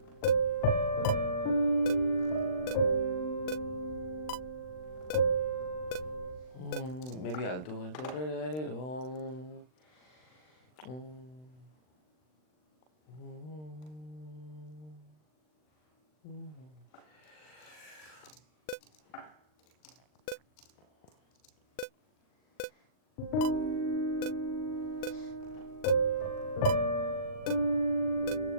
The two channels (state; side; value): late; right; 39 ms